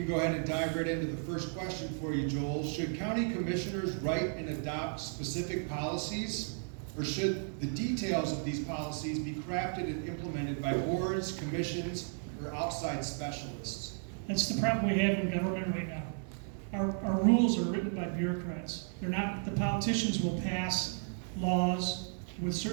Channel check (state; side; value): silent; left; 55 dB below the other